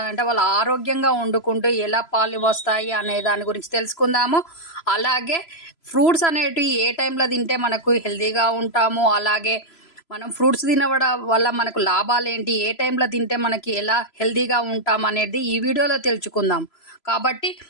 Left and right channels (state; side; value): late; right; 3.0 ms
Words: వాళ్ళు ఆరోగ్యంగా వండుకుంటూ ఎలా పాలు వస్తాయి అనే దాని గురించి తెలుసుకుందాము. అలాగే ఫ్రూట్స్ అనేటివి ఏ టైంలో తింటే మనకు హెల్తీగా ఉంటాము, అలాగే మనం ఫ్రూట్స్ తినవడం వల్ల మనకు లాభాలు ఏంటి, ఏ టైంలో తింటే మనకి ఎలా హెల్తీగా ఉంటాం అనేది ఈ వీడియోలో తెలుసుకుందాం. కాబట్టి